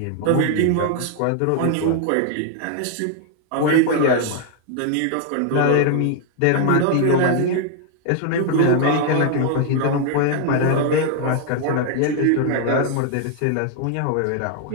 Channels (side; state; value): both; different; correlation 0.00